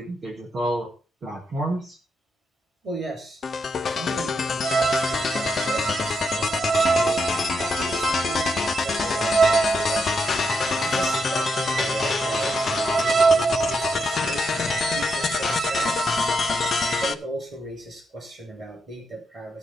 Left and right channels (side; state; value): both; normal; correlation 0.81